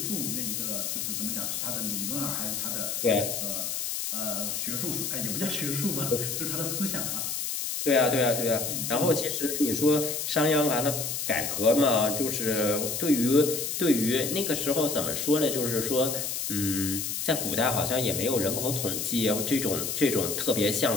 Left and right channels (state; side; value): noise; left; hiss, 2 dB below the sound